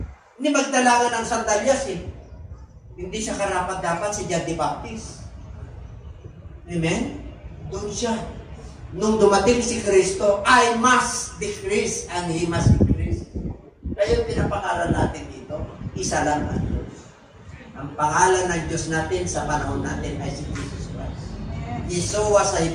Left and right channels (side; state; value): both; identical; correlation 1.00